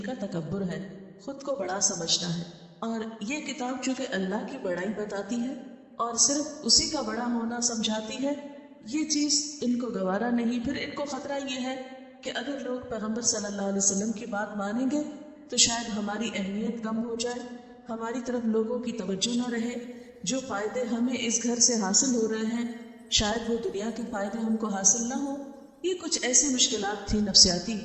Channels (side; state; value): both; identical; correlation 1.00